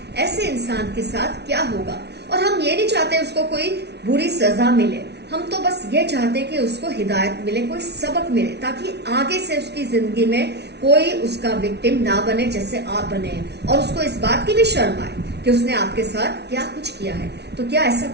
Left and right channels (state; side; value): late; left; 0.49 ms